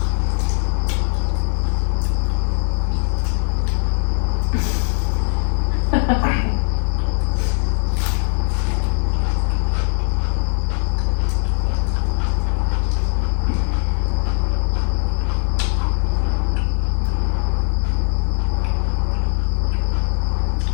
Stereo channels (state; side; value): silent; right; 57 dB below the other